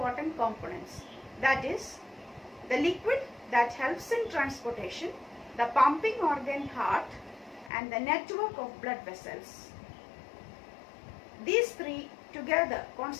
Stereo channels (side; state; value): right; drops out; at 7.7 s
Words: components, that is the liquid that helps in transportation, the pumping organ heart and the network of blood vessels. These three together